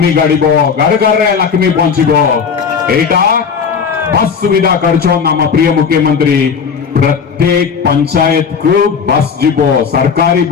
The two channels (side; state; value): right; quieter; 6.3 dB